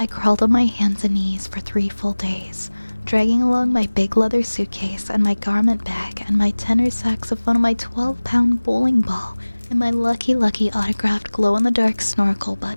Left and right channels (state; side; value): inverted; both; correlation -1.00